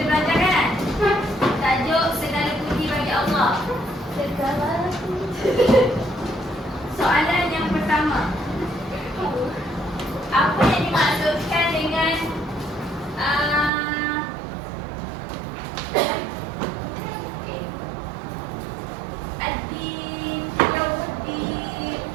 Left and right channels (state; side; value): drops out; left; at 13.7 s